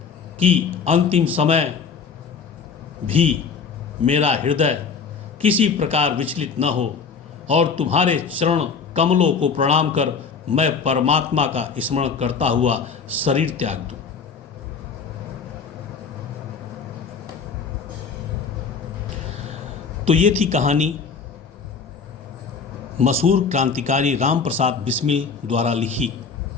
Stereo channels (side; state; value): right; quieter; 5.6 dB